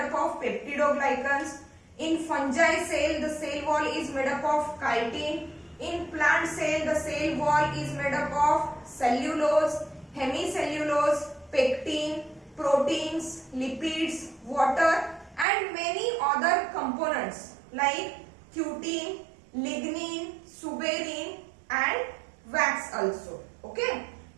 of peptidoglycans. In fungi cell, the cell wall is made up of chitin. In plant cell, the cell wall is made up of cellulose, hemicellulose, pectin, proteins, lipids, water, and many other components like cutin, lignin, suberin, and wax also. Okay.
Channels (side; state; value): left; drops out; at 15.5 s